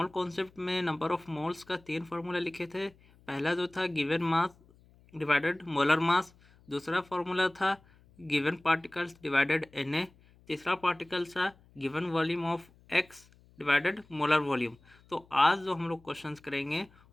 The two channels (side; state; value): left; noise; hum, 28 dB below the sound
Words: कॉन्सेप्ट में नंबर ऑफ मोल्स का 3 फार्मूला लिखे थे। पहला जो था given mass divided molar mass, दूसरा फार्मूला था गिवन पार्टिकल्स डिवाइडेड Na, तीसरा पार्टिकल था given volume of X divided molar volume. तो आज जो हम लोग क्वेश्चंस करेंगे